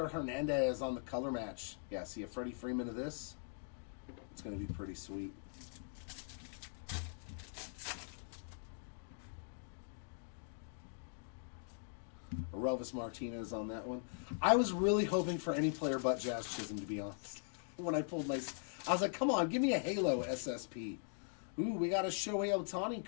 Hernandez on the color match. Yeah, see a Freddie Freeman of this. It's going to be pretty sweet. Arovis Martinez on that one. I was really hoping for any player but Jazz Chisholm, to be honest. When I pulled I was like, come on, give me a Halo SSP. Ooh, we got a Shohei Ohtani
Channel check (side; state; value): right; silent; digital silence